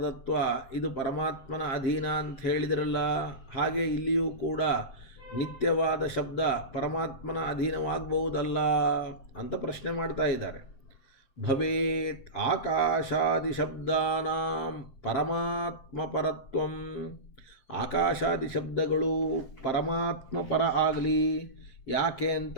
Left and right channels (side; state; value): right; late; 7.6 ms